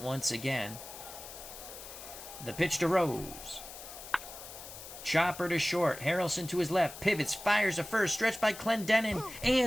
once again. The pitch to Rose. Chopper to short. Harrelson to his left. Pivots. Fires to first. Stretched by Clendenin.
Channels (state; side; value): noise; left; hiss, 13 dB below the sound